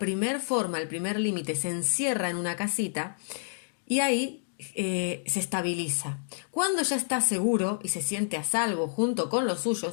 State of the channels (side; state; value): right; silent; digital silence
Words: forma, el primer límite, se encierra en una casita y ahí se estabiliza. Cuando ya está seguro y se siente a salvo junto con los